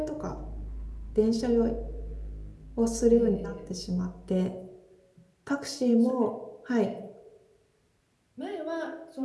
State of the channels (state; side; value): identical; both; correlation 1.00